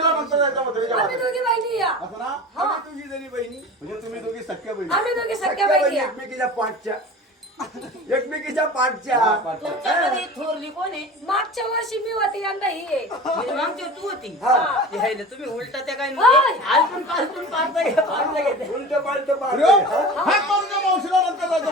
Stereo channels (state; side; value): normal; both; correlation 0.35